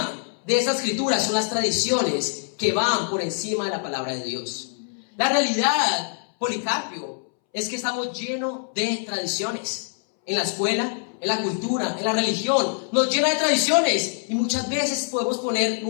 de esta escritura son las tradiciones que van por encima de la palabra de Dios. La realidad, Policarpio, es que estamos llenos de tradiciones. En la escuela, en la cultura, en la religión, nos llena de tradiciones. Y muchas veces podemos poner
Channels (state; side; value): silent; right; 62 dB below the other